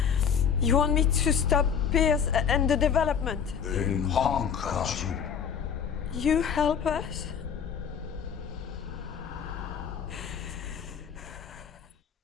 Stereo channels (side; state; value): right; quieter; 7.4 dB